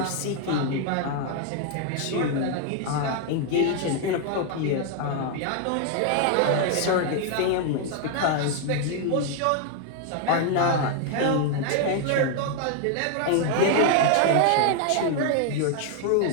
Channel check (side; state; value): both; different; correlation 0.00